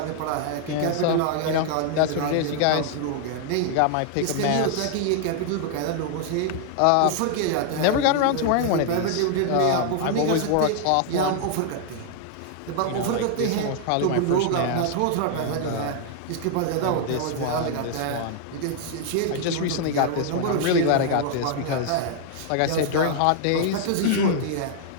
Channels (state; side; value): different; both; correlation 0.00